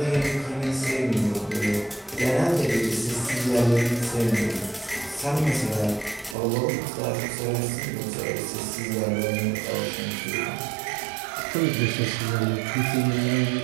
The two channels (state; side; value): drops out; left; at 6.4 s